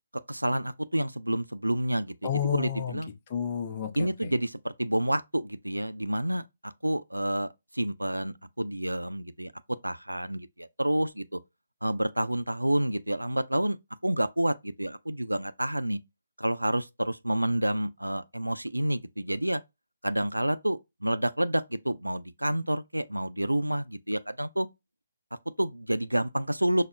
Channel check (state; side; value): inverted; both; correlation -0.96